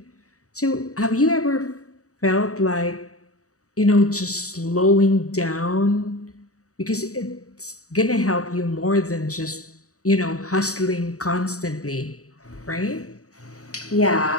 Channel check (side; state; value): right; late; 0.66 ms